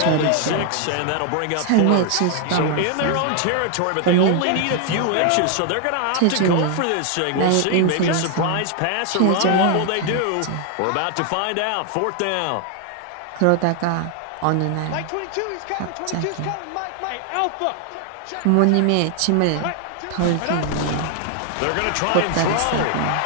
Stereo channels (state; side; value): different; both; correlation 0.00